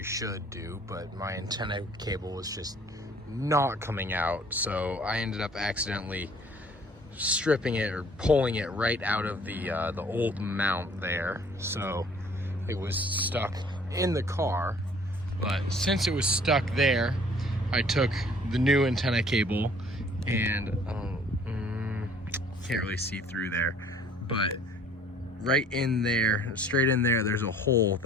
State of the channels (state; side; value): normal; both; correlation 0.55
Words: should do, but my antenna cable was just not coming out, so I ended up accidentally stripping it or pulling it right out of the old mount there, so it was stuck in the car. But since it was stuck there, I took the new antenna cable and can't really see through there, but right in there, straight in there, there's a hole